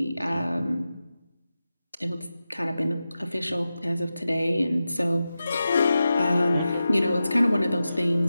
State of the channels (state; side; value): inverted; both; correlation -0.92